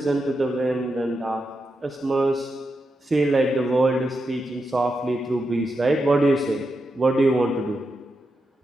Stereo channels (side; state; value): both; normal; correlation 0.86